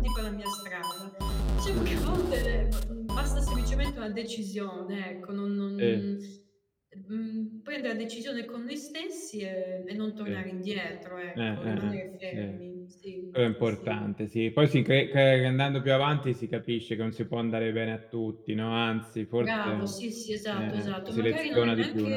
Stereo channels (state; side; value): identical; both; correlation 1.00